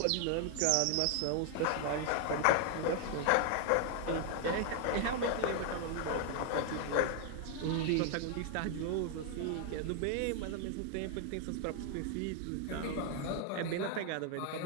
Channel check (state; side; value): different; both; correlation 0.00